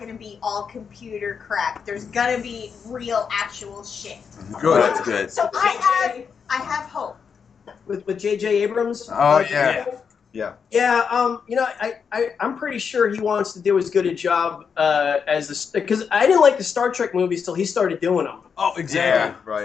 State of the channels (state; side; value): quieter; right; 6.4 dB